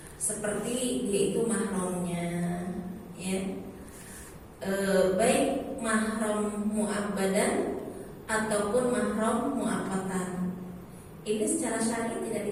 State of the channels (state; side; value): identical; both; correlation 1.00